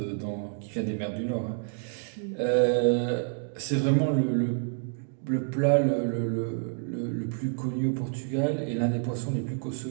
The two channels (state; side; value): silent; left; 59 dB below the other